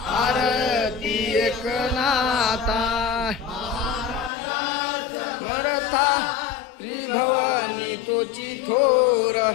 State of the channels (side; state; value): right; drops out; at 4.3 s